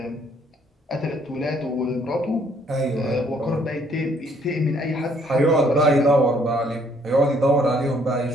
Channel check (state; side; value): normal; both; correlation 0.65